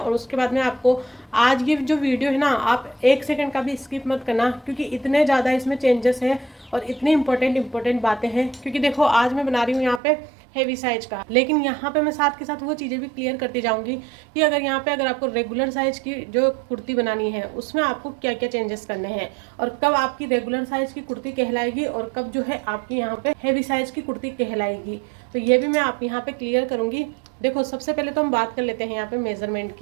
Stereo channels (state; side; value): drops out; left; at 10.0 s